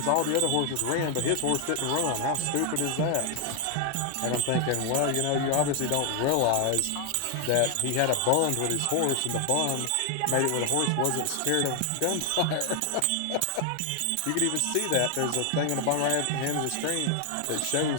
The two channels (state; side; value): different; both; correlation 0.00